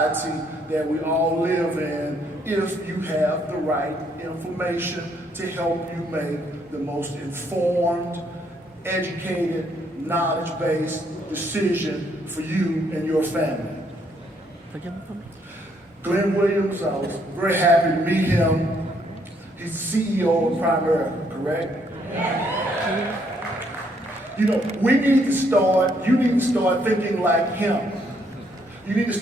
that we all live in if you have the right information to help you make the most informed, educated, knowledge-based decision for you and your family. Glenn Williams, I was very happy to meet him. He's the CEO of Primerica, correct? You know, you need to start thinking like him. You need to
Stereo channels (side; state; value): both; normal; correlation 0.70